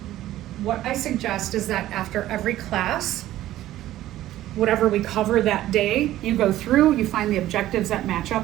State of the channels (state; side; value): quieter; left; 14.2 dB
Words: What I suggest is that after every class, whatever we cover that day, you go through, you find the objectives that match